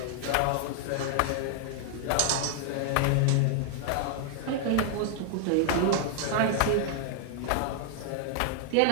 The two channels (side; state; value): both; different; correlation 0.00